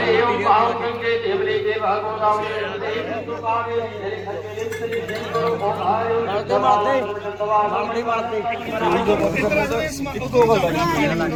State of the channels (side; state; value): both; identical; correlation 1.00